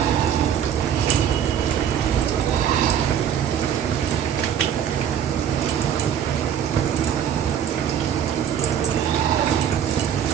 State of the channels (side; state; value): left; quieter; 9.0 dB